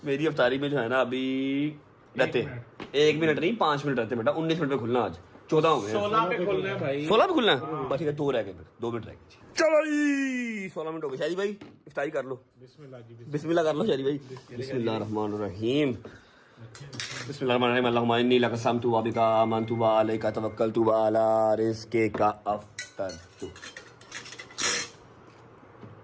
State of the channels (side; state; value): both; identical; correlation 1.00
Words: मेरी अफ्तारी में जो है ना अभी रहते 1 मिनट नहीं 5 मिनट रहते बेटा 19 मिनट में खुलना आज 14 हो गए 16 पे खुलना है भाई 16 पे खुलना है बस ठीक है 2 रह गए फिर 2 मिनट रह गए चलो जी 16 मिनट हो गए शादी भाई इफ्तारी कर लो बिस्मिल्लाह कर लो शादी भाई बिस्मिल्लाहिर्रहमानिर्रहीम बिस्मिल्लाहिर्रहमानिर्रहीम अल्लाहुम्मा इन्नी लक समतु व बिका आमनतु व अलैका तवक्कलतु व अला रिज़्क़िका अफ़तरतु